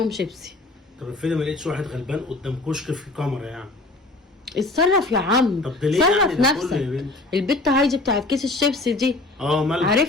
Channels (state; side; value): quieter; right; 3.0 dB